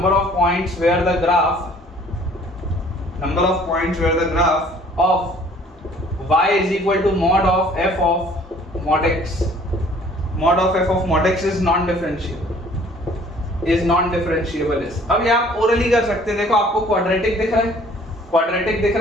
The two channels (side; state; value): both; normal; correlation 0.55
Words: of y is equal to mod of f of mod x is non-differentiable is। अब ये आप ओरली कर सकते हैं। देखो आपको क्वाड्रेटिक दिख